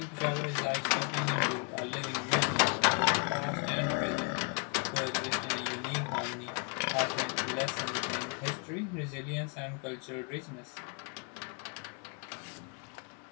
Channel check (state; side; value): quieter; right; 39.3 dB